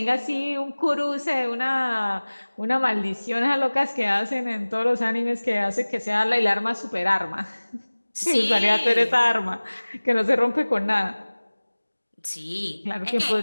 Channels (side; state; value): both; inverted; correlation -1.00